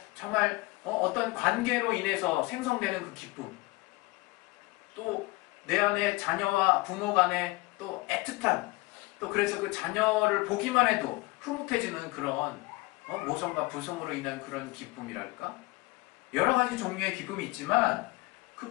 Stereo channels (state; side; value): quieter; right; 22.5 dB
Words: 정말 어떤 관계로 인해서 생성되는 그 기쁨, 또 내 안에 자녀와 부모 간에 또 애틋한, 또 그래서 그 자녀를 보기만 해도 흐뭇해지는 그런 모성과 부성으로 인한 그런 기쁨이랄까? 여러 가지 종류의 기쁨이 있지만 그